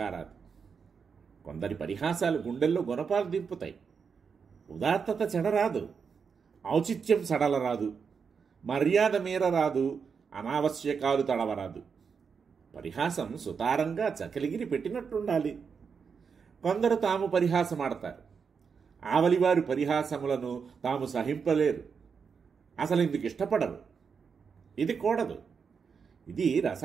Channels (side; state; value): left; quieter; 6.0 dB